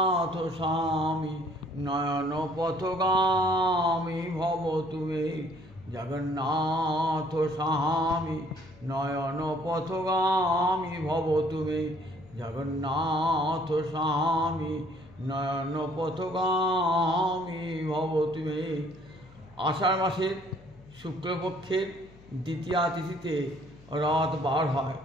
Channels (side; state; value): left; noise; hum, 23 dB below the sound